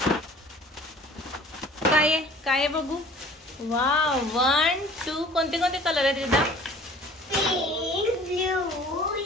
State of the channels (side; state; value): both; normal; correlation 0.48